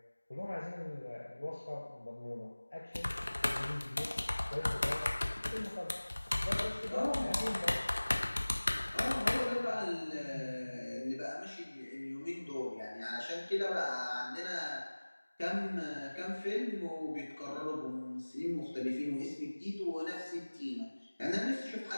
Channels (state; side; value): inverted; both; correlation -1.00